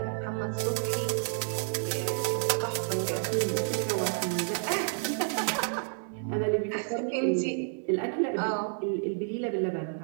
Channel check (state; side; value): silent; left; 58 dB below the other